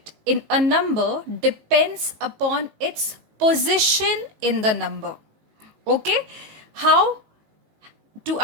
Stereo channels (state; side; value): late; left; 18 ms